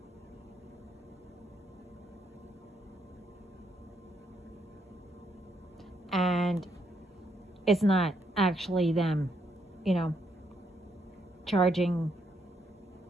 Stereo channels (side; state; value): both; normal; correlation 0.75